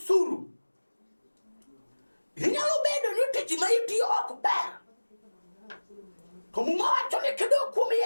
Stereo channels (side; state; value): both; inverted; correlation -1.00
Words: inyalo bedo ni tich ma itiyo ok ber, to Muma wacho ni kidok kuom